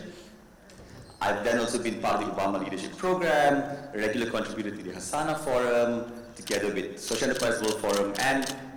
I've then also been part of the Obama Leadership Program, a regular contributor to the Hasana Forum, together with Social Enterprise World Forum, and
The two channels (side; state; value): both; identical; correlation 1.00